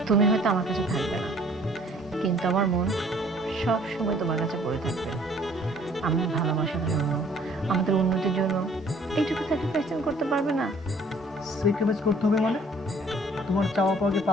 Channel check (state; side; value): normal; both; correlation 0.56